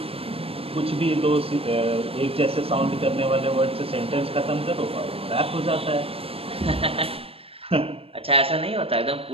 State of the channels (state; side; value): late; left; 0.28 ms